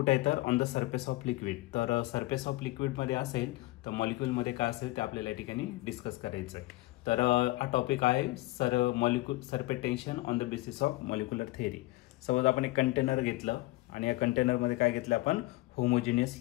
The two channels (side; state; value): right; quieter; 19.6 dB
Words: आहे तर on the surface of liquid. तर सरफेस ऑफ लिक्विडमध्ये असेल तर मॉलिक्यूलमध्ये काय असेल ते आपल्याला या ठिकाणी डिस्कस करायचं आहे. तर हा टॉपिक आहे surface on the basis of molecular theory. Suppose आपण एक कंटेनर घेतलं आणि या कंटेनरमध्ये काय घेतलं आपण, होमोजिनियस